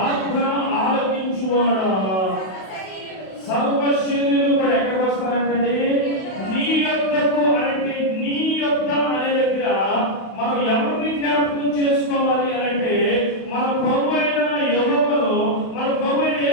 ఆలకించువాడా సర్వ శరీరులు కూడా ఎక్కడికి వస్తారంటే నీ యొద్దకు. అంటే నీ యొద్ద అనే దగ్గర మనం ఎవరిని జ్ఞాపకం చేసుకోవాలి అంటే, మన ప్రభువైన యెహోవాను, మన ప్రభువైన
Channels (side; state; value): right; late; 32 ms